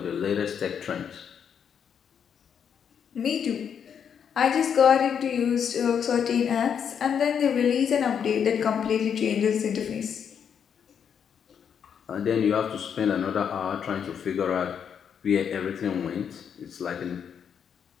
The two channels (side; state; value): right; quieter; 7.7 dB